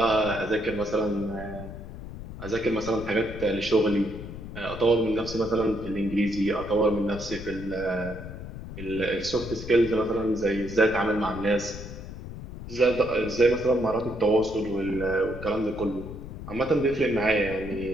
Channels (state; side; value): noise; left; rumble, 11 dB below the sound